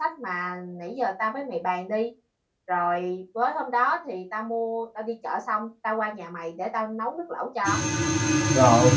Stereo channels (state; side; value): identical; both; correlation 1.00